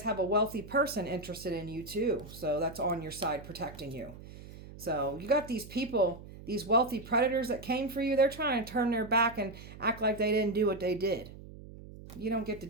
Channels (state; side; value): noise; right; hum, 16 dB below the sound